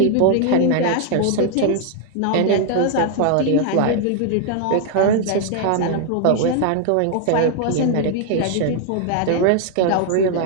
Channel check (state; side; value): different; both; correlation 0.00